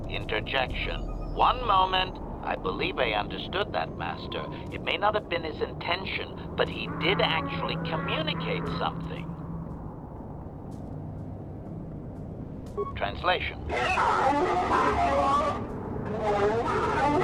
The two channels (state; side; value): identical; both; correlation 1.00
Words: Interjection. One moment. I believe I understood that, Master. It may not have been his intention, but he did actually communicate something. Translation.